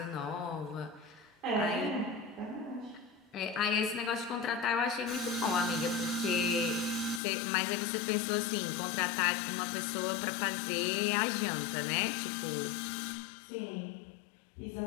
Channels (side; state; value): right; drops out; at 7.2 s